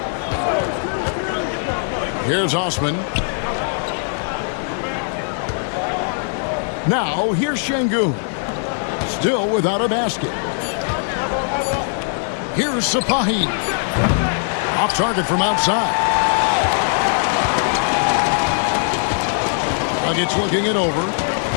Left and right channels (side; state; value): right; silent; digital silence